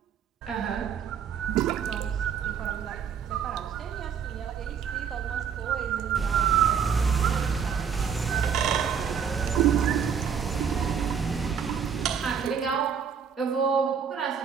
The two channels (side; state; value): left; quieter; 7.2 dB